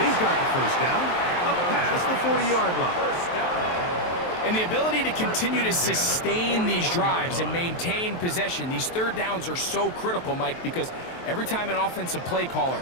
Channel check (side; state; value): right; late; 23 ms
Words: He's got the first down. Up past the 40-yard line. First down. And the ability to continue to sustain these drives and maintain possession, these third downs are so critical, Mike, because every time an offensive play caller